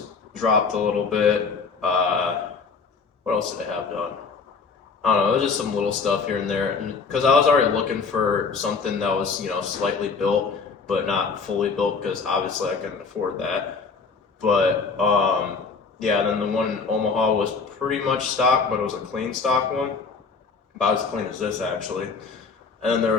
dropped a little bit. What else did it have done? I don't know. It was just some little stuff here and there, because I was already looking for something that was, you know, slightly built but not fully built, because obviously I couldn't afford that. But yeah, then the one in Omaha was pretty much stock, but it was a clean stock one, about as clean as this actually. And then there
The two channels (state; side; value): quieter; right; 5.0 dB